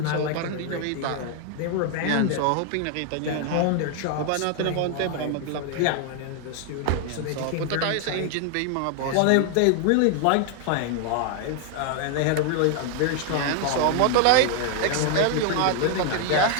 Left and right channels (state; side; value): different; both; correlation 0.00